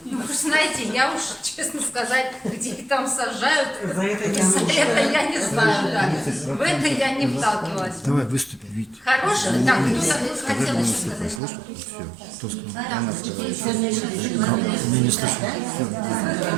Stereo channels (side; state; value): left; drops out; at 11.4 s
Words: Ну, вы знаете, я уж, честно сказать, где их там сажают, За это я за это я не знаю, да. В это я не вталкивалась. Давай выступи, Вить. Хорошо, так, кто хотел еще сказать? Слышно? Все. Кто сказал? Она сказала. Не слышно.